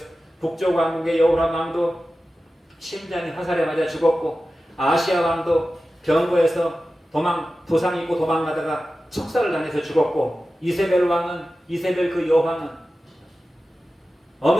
북쪽 왕국의 여호람 왕도 심장이 화살에 맞아 죽었고 아시아 왕도 병거에서 도상 입고 도망가다가 척살을 당해서 죽었고 이세벨 그 여왕은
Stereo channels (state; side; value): normal; both; correlation 0.94